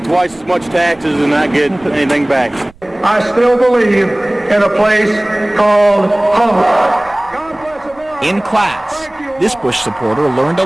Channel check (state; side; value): noise; right; rumble, 27 dB below the sound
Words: twice as much taxes and not get anything back. I still believe in a place called home. In class, this Bush supporter learned a